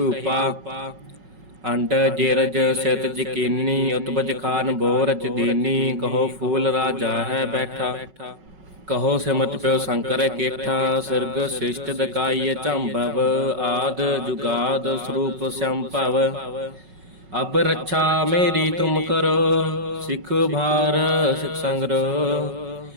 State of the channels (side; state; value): left; late; 5.4 ms